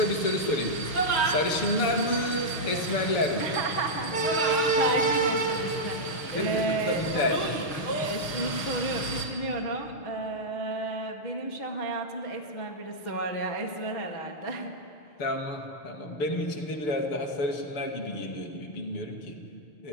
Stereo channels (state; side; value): late; right; 6.3 ms